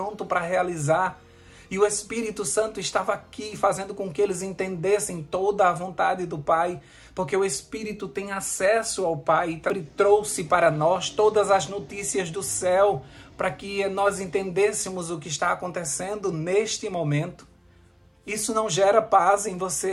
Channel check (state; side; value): identical; both; correlation 1.00